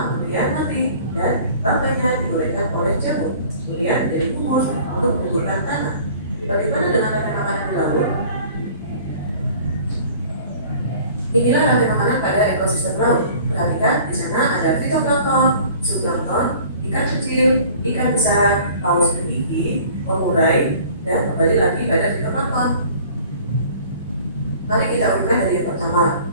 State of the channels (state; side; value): inverted; both; correlation -0.48